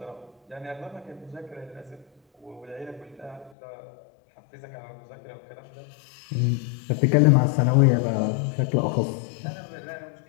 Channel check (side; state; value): right; drops out; at 3.5 s